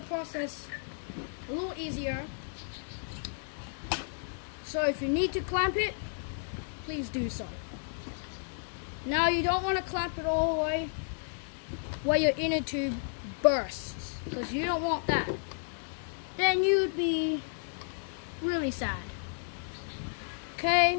a little easier. So if you need to clamp it, please do so. Now you don't want to clamp it all the way where your inner tube bursts, because you don't want that. Then you'd be really sad.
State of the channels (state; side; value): silent; right; 56 dB below the other